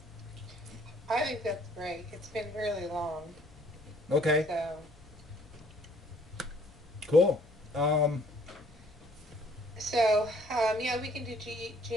I think that's great. It's been really long. Okay. So. Cool. Yeah, we can do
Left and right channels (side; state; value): both; normal; correlation 0.61